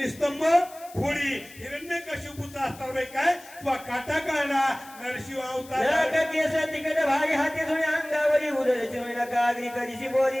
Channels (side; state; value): left; noise; hiss, 20 dB below the sound